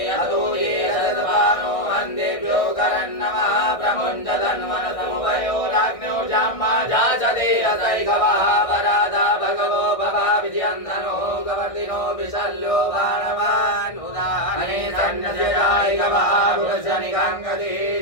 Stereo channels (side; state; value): right; late; 1.6 ms